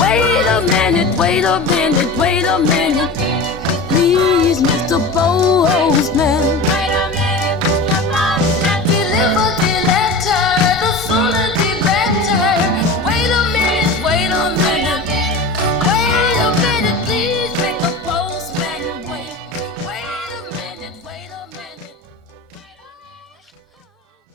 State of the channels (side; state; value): right; quieter; 3.1 dB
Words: a minute, wait a minute, wait a minute. Please,